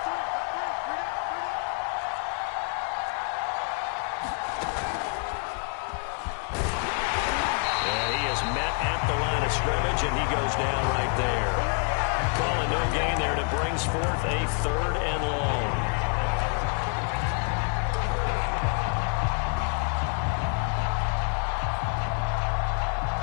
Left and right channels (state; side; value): quieter; right; 39.5 dB